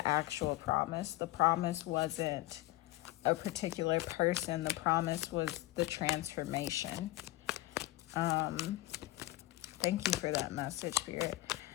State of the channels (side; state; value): right; quieter; 17.2 dB